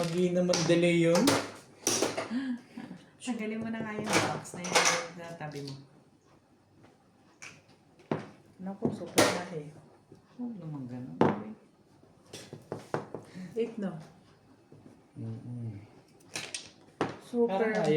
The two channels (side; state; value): both; identical; correlation 1.00